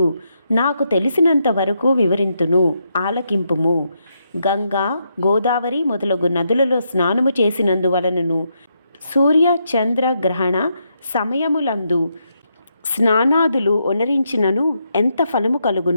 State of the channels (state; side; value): inverted; both; correlation -0.80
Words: నాకు తెలిసినంత వరకు వివరింతును, ఆలకింపుము. గంగా, గోదావరి మొదలగు నదులలో స్నానము చేసినందువలనను సూర్య చంద్ర గ్రహణ సమయములందు స్నానాదులు ఒనరించినను ఎంత ఫలము